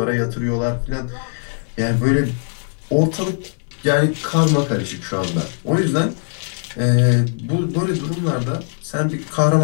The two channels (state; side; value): silent; right; 60 dB below the other